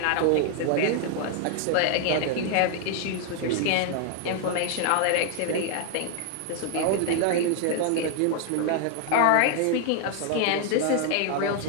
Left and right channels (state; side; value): different; both; correlation 0.00